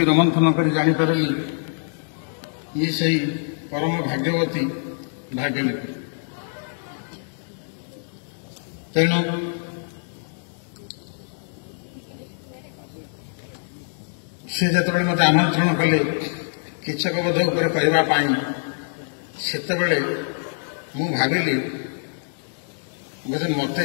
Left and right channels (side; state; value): right; silent; digital silence